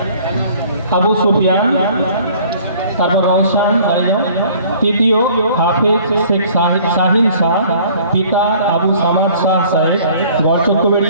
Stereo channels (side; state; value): both; inverted; correlation -0.53